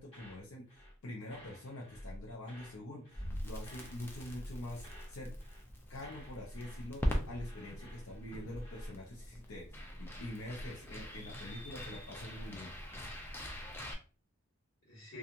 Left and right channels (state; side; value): normal; both; correlation 0.78